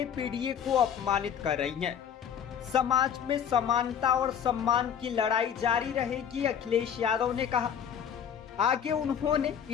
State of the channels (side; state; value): right; quieter; 8.4 dB